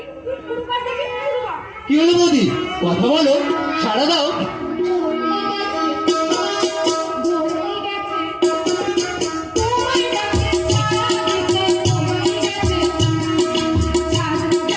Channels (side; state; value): both; identical; correlation 1.00